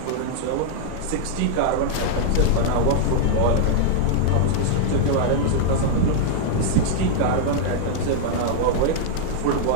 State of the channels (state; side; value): different; both; correlation -0.01